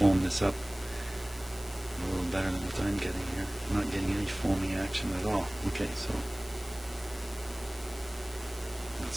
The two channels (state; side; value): noise; left; hiss, 16 dB below the sound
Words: this up a little better than what I'm getting here. I'm not getting any foaming action at all. Okay, so let's